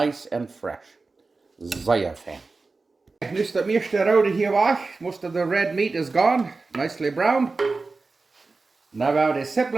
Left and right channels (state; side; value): quieter; left; 3.8 dB